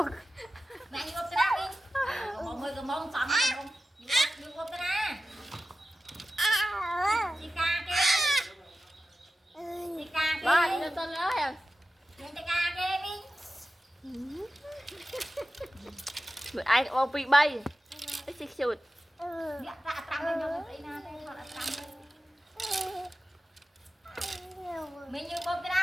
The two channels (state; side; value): normal; both; correlation 0.93